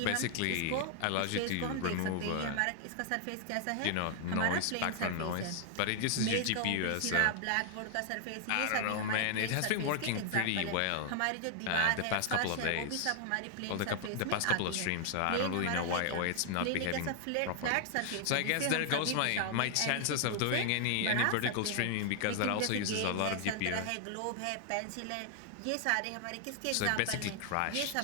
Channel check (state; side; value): different; both; correlation 0.00